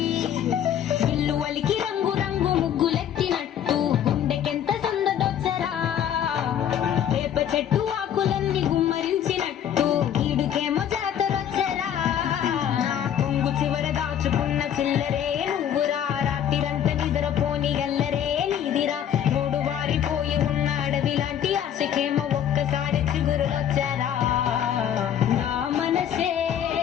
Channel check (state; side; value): quieter; right; 9.7 dB